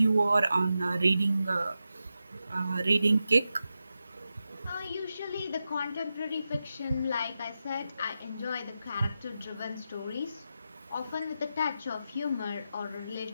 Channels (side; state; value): both; inverted; correlation -0.90